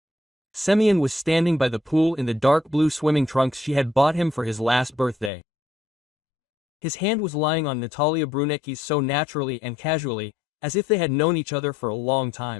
Semyon was standing by the pool in the dark blue swimming trunks she had bought him for his last birthday. His hand was lying on Natalia Brunecki's so naturally and casually, as if they had known each other for a long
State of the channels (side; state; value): right; drops out; at 5.3 s